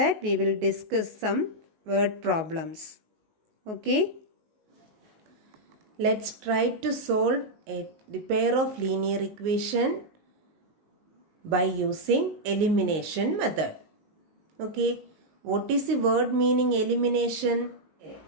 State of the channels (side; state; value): left; late; 19 ms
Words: we will discuss some word problems. Okay. Let's try to solve the pair of linear equation by using elimination method. Okay. What is the word meaning elimination?